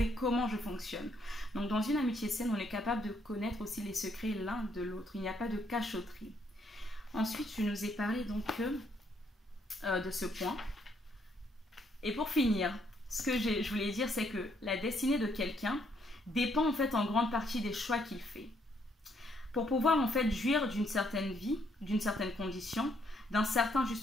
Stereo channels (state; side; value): normal; both; correlation 0.71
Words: comment je fonctionne. » Donc, dans une amitié saine, on est capable de connaître aussi les secrets l'un de l'autre. Il n'y a pas de cachotterie. Ensuite, je nous ai parlé donc de ce point. Et pour finir, ce que je voulais dire, c'est que la destinée de quelqu'un dépend en fait en grande partie des choix qu'il fait. Pour pouvoir en fait jouir d'une certaine vie, d'une certaine condition, d'un certain